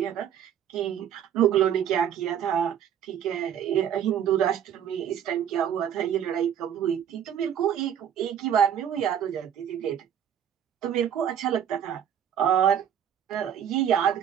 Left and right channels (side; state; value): left; quieter; 9.3 dB